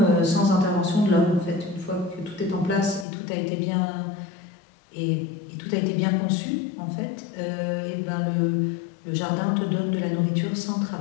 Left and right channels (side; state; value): right; drops out; at 3.1 s